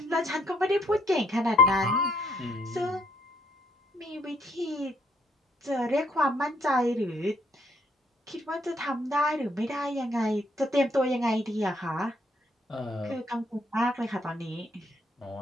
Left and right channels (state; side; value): normal; both; correlation 0.68